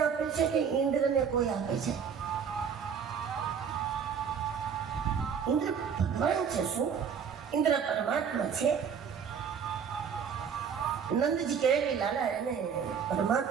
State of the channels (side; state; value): left; quieter; 7.0 dB